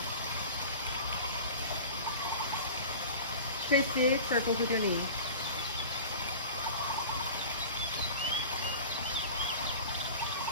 Trace big circles with your knees.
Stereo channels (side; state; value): both; inverted; correlation -0.37